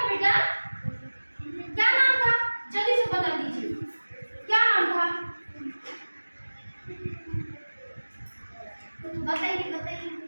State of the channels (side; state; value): both; inverted; correlation -1.00